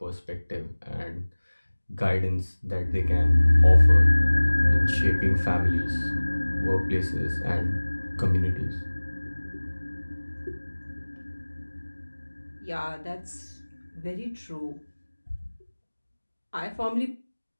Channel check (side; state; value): both; inverted; correlation -1.00